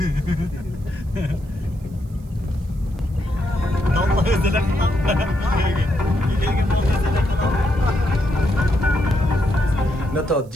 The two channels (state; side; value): noise; right; hiss, 30 dB below the sound